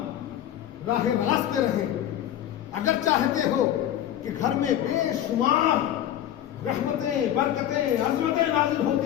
راہ راست پہ رہیں، اگر چاہتے ہو کہ گھر میں بے شمار رحمتیں، برکتیں، عظمتیں نازل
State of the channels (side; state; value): right; quieter; 11.5 dB